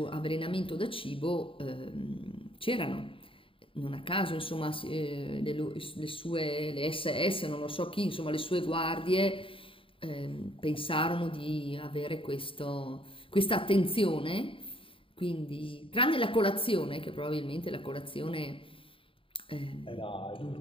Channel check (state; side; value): late; right; 0.26 ms